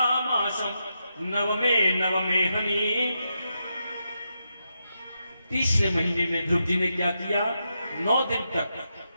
मासं नवमे हनि। तीसरे महीने में ध्रुव जी ने क्या किया, 9 दिन तक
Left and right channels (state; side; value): inverted; both; correlation -0.85